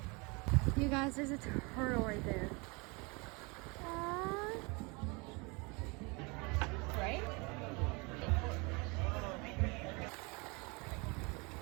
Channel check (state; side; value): quieter; left; 28.8 dB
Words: You guys, there's a turtle right there. Aww. Right?